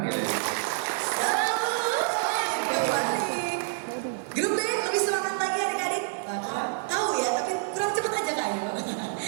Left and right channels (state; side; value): silent; left; 60 dB below the other